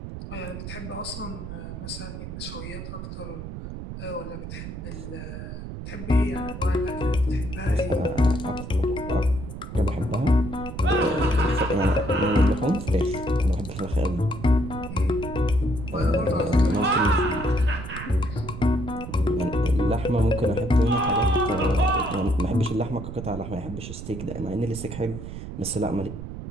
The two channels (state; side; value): noise; right; rumble, 9 dB below the sound